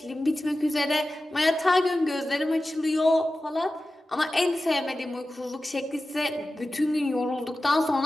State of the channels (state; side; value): normal; both; correlation 0.95